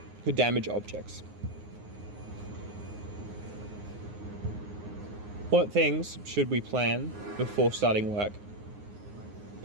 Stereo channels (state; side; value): late; left; 9.6 ms